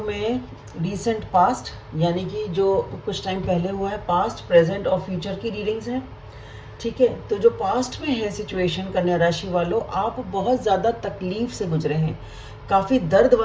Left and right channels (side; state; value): both; identical; correlation 1.00